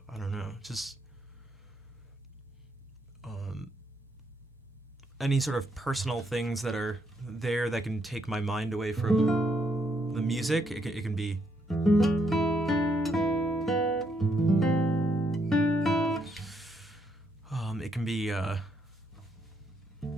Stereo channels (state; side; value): normal; both; correlation 0.75